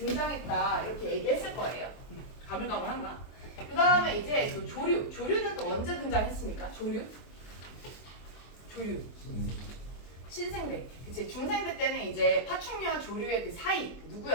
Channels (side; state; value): right; late; 24 ms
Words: 이렇게 얘기했을 거예요. 가물가물한가? 그 다음에 이제 또 조류는 또 언제 등장했습니까? 조류? 신생대. 그치? 중생대 때는 이제 파충류와 조류의 그 사이